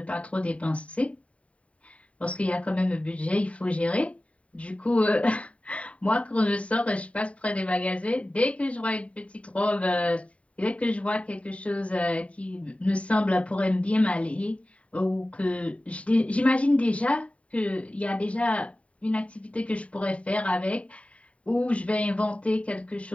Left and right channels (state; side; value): late; right; 0.065 ms